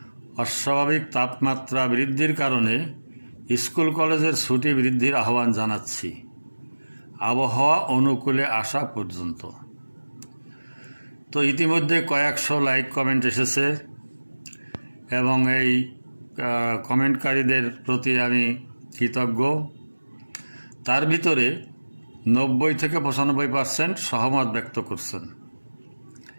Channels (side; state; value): both; inverted; correlation -1.00